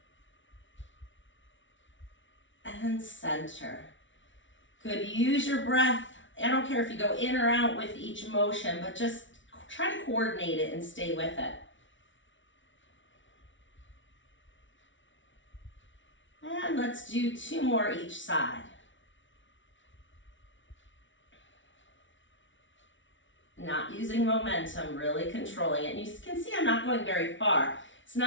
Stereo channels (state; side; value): late; right; 0.56 ms